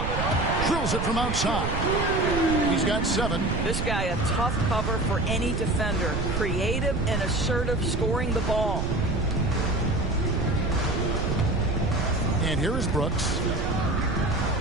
Drills it from outside. He's got 7. This guy a tough cover for any defender. Creative and assertive scoring the ball. And here is Brooks.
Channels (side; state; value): right; noise; rumble, 1 dB below the sound